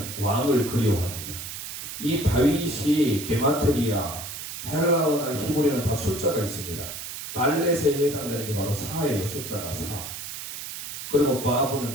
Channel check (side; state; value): right; noise; hiss, 8 dB below the sound